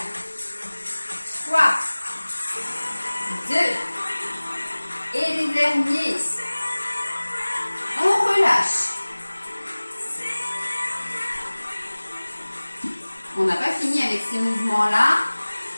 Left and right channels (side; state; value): both; inverted; correlation -1.00